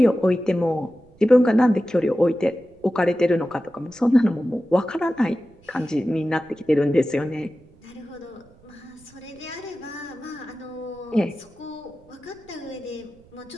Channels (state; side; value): noise; right; rumble, 27 dB below the sound